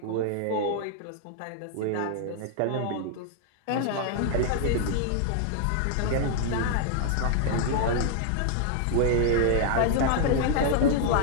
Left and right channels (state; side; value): different; both; correlation 0.00